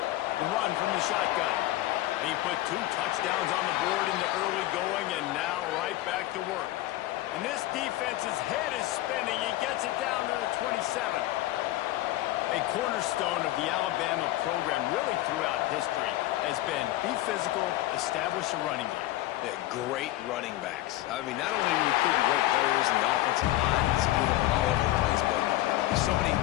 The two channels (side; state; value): right; quieter; 15.9 dB